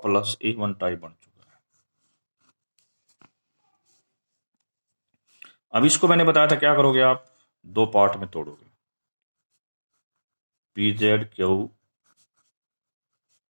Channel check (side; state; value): both; inverted; correlation -1.00